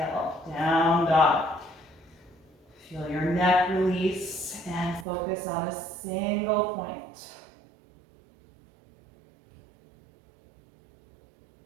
down dog. Feel your neck release and focus on a single point.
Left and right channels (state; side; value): drops out; left; at 5.1 s